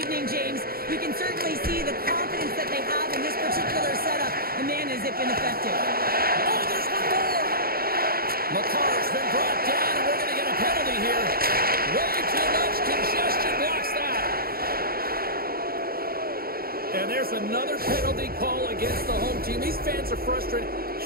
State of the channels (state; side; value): late; left; 0.44 ms